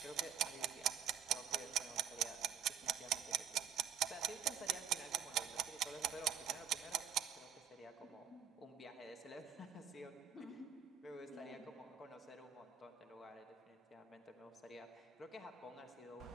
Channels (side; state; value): left; quieter; 8.4 dB